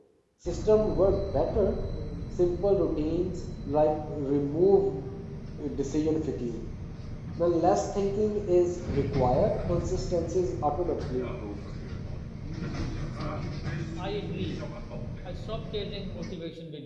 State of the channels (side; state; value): both; identical; correlation 1.00